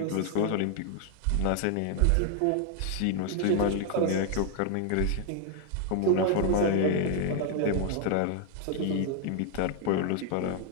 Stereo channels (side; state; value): both; different; correlation 0.00